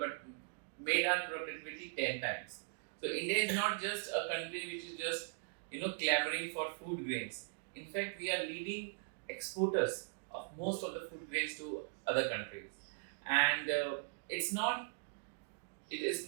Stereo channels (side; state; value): left; silent; digital silence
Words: made our productivity 10 times. So India is not just a country which is just, you know, clamoring for food grains. In fact, we are leading exporters of most of the food grains to other countries, and it is